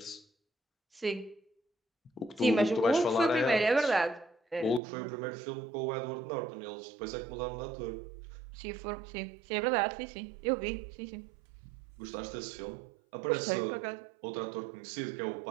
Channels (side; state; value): left; drops out; at 4.8 s